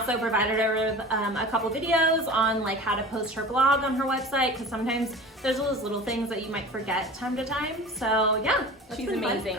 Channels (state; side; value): normal; both; correlation 0.37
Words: provided her with a couple videos on like how to post her blog on her website, because sometimes there's those little things that you might forget time to time. So yeah, She's been fun. amazing.